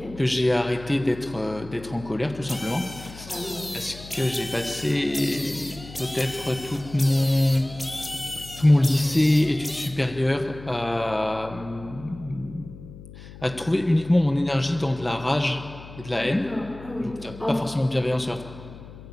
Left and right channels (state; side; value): noise; left; hum, 16 dB below the sound